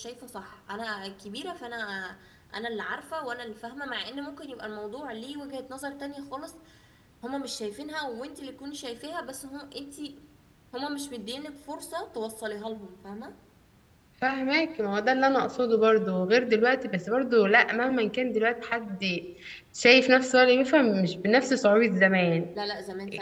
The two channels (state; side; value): identical; both; correlation 1.00